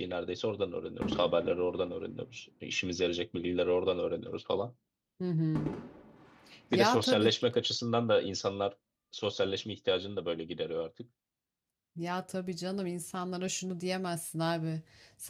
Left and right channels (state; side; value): identical; both; correlation 1.00